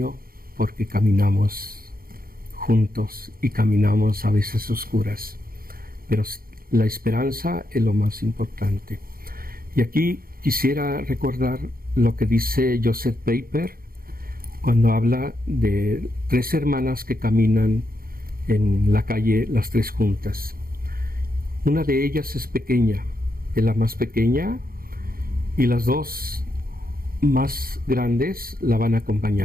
porque caminamos juntos y caminamos a veces oscuras. Pero la esperanza es lo más importante. Y aquí quisiera recordar lo que dice Joseph Pieper cuando habla de 3 hermanas que caminan en la calle, las 3 juntas. Una de ellas es pequeña, es la más pequeña, y las 2 más grandes la van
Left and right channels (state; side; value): late; left; 0.42 ms